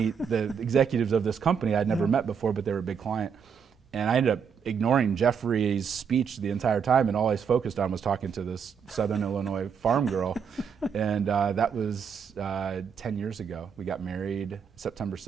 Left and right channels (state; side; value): quieter; left; 6.8 dB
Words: the executives of this company I'd never met before, but they were a big client. And I ended up ignoring Jeffrey's speech the entire time, and all I was focused on was talking to this Southern Illinois farm girl. And that was 10 years ago. We got married September